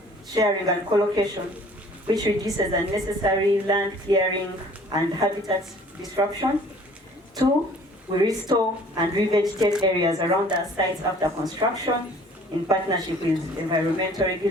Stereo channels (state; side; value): normal; both; correlation 0.52